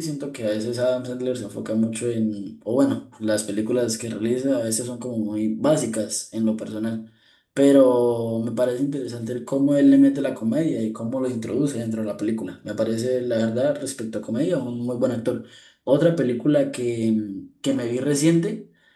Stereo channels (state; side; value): identical; both; correlation 1.00